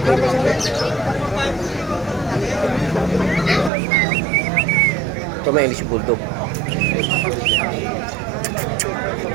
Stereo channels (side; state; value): left; drops out; at 3.7 s